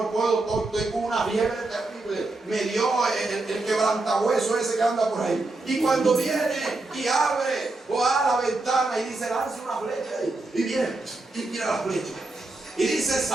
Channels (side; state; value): left; quieter; 3.1 dB